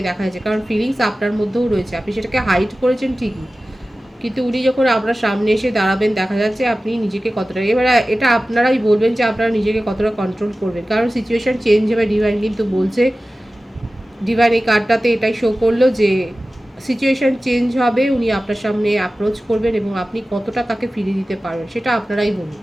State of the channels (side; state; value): both; normal; correlation 0.96